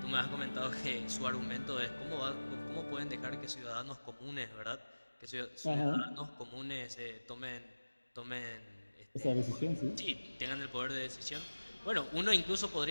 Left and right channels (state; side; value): inverted; both; correlation -1.00